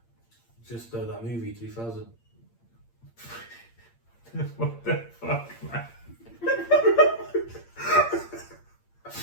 Just that movie 2000. What the fuck, man?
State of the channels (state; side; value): late; right; 8.7 ms